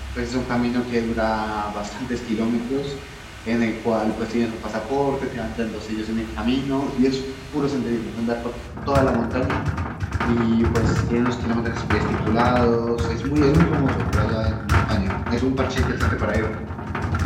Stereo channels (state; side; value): identical; both; correlation 1.00